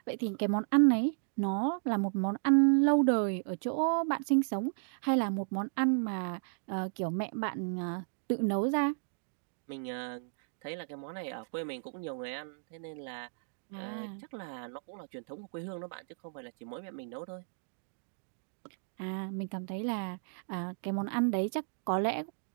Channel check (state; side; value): silent; left; digital silence